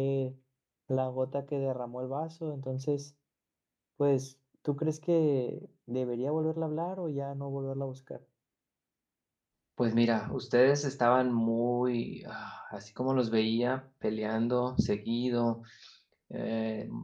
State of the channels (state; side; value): identical; both; correlation 1.00